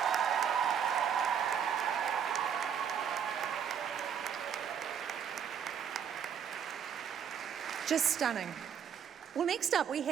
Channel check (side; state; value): left; quieter; 8.0 dB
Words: Just stunning. Well, next up we